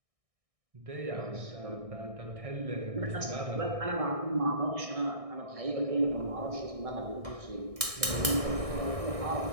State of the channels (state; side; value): late; left; 1.6 ms